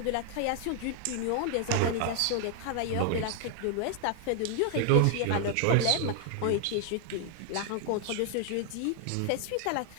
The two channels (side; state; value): both; different; correlation 0.00